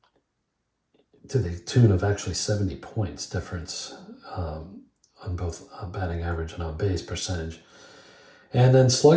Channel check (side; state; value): both; identical; correlation 1.00